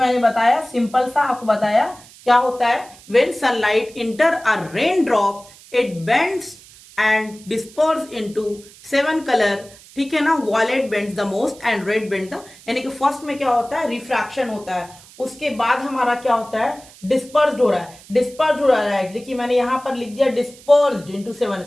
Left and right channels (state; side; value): noise; right; hiss, 22 dB below the sound